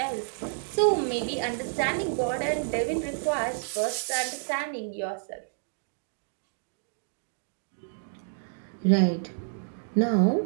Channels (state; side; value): silent; left; digital silence